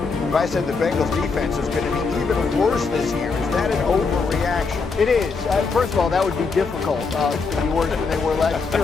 If I said the Bengals defense is going to be even worse this year, is that an overreaction? It is. First of all, that would be difficult to be worse than they were last year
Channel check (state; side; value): quieter; right; 4.6 dB